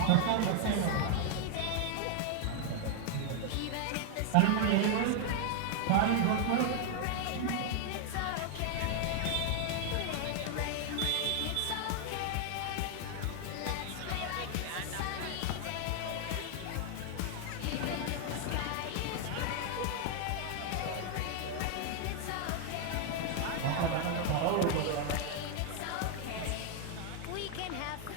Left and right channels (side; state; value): both; different; correlation 0.00